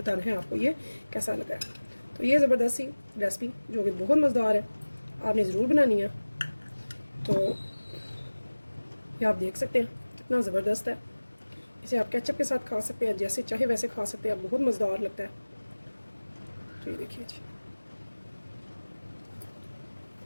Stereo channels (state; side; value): inverted; both; correlation -1.00